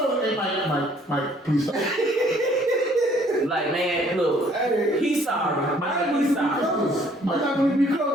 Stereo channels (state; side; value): normal; both; correlation 0.61